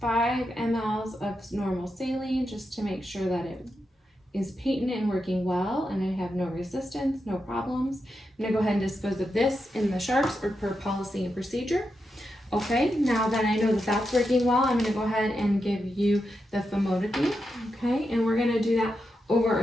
5 mLs of normal saline, just to make sure that it is patent and working well, and I have no resistance, no problems. I'm gonna go ahead and dispose of this in the sharps or per policy and procedure. Okay, now that I know that that's working well, I'm gonna go ahead and give you the famotidine, okay? And we're gonna do that over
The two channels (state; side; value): normal; both; correlation 0.87